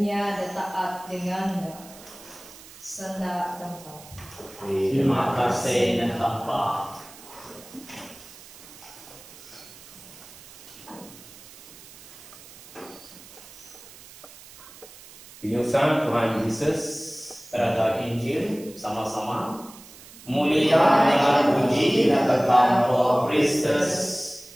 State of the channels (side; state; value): right; noise; hiss, 19 dB below the sound